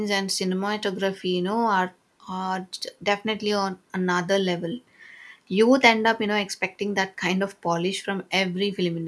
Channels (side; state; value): both; identical; correlation 1.00